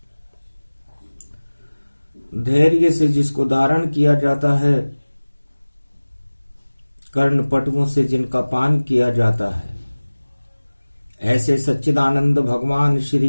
धैर्य से जिसको धारण किया जाता है, कर्णपटुओं से जिनका पान किया जाता है, ऐसे सच्चिदानंद भगवान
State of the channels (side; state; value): both; inverted; correlation -1.00